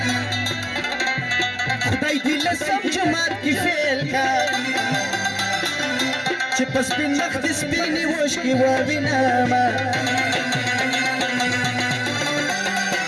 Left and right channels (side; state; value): both; identical; correlation 1.00